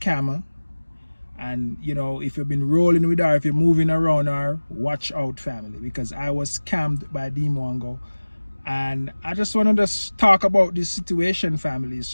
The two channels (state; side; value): inverted; both; correlation -1.00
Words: And you know, if you've been rolling with her, if you're moving around her, watch out, family, because I was scammed by Dee Mwango. And I just want to just talk about this situation, family.